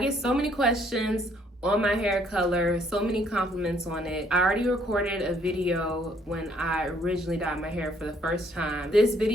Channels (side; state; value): both; normal; correlation 0.65